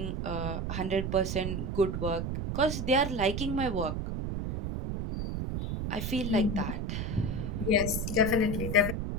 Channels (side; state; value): right; noise; rumble, 3 dB below the sound